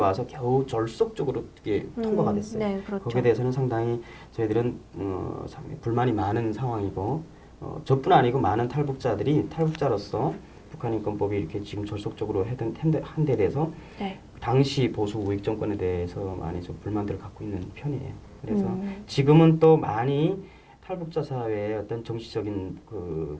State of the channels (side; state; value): both; identical; correlation 1.00